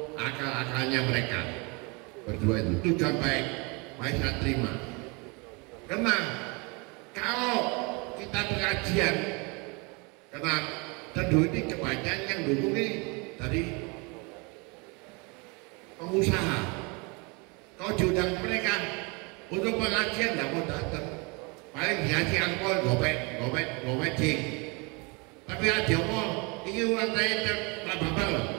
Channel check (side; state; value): left; quieter; 29.7 dB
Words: akal-akalnya mereka berdua itu sudah baik, saya terima. Karena kalau kita pengajian, karena tentu ini kebanyakan yang dukung ini dari pengusaha. Kalau diundang mereka untuk pengajian tidak mau datang, paling dikasih angpau gopek jing. Tapi ada mau ini uang saya nggak apa-apa